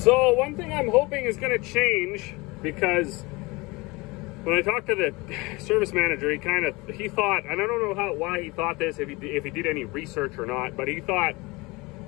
So one thing I'm hoping is going to change, because when I talked to the service manager, he thought, and I don't know why he thought this, if he did any research or not, but he thought,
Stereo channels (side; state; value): right; quieter; 24.2 dB